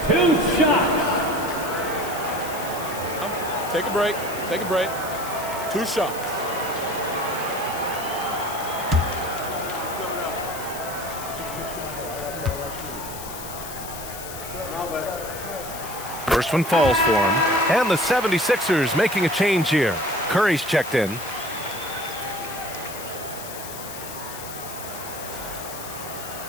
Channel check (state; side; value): noise; left; hiss, 11 dB below the sound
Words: 2 shots. Take a break. Take a break. 2 shots. First one falls for him. And the 76ers making a change here. Curry's checked in.